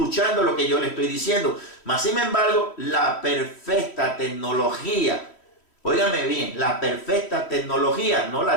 lo que yo le estoy diciendo. Mas, sin embargo, la perfecta tecnología, óigame bien, la perfecta tecnología no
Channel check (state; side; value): late; right; 3.1 ms